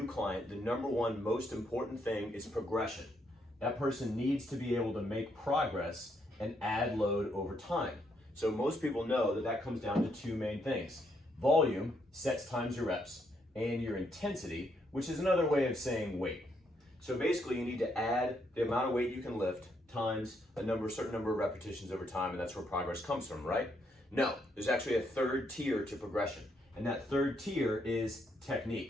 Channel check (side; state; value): both; normal; correlation 0.75